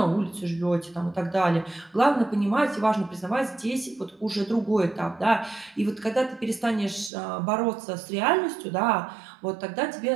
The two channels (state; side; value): drops out; left; at 7.1 s